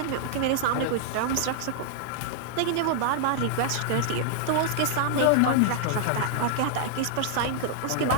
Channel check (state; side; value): different; both; correlation -0.01